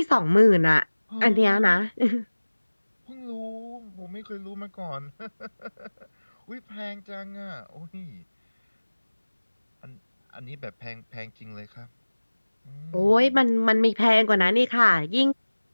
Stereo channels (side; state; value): both; inverted; correlation -1.00